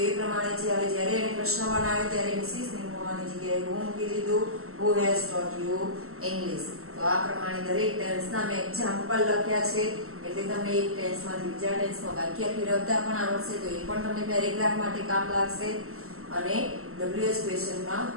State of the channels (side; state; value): left; late; 0.63 ms